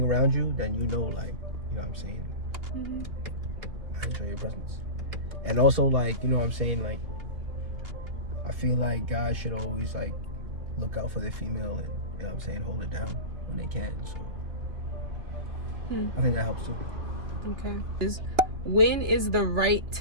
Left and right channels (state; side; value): late; left; 2.8 ms